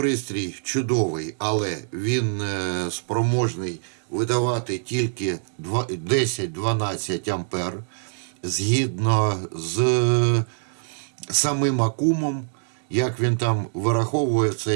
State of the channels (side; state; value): left; silent; 62 dB below the other